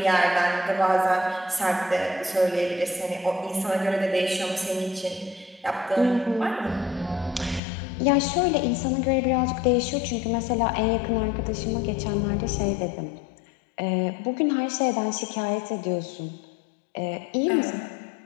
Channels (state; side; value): drops out; right; at 7.6 s